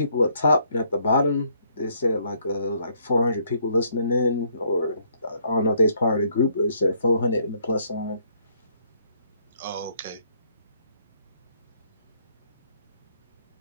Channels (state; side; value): inverted; both; correlation -0.68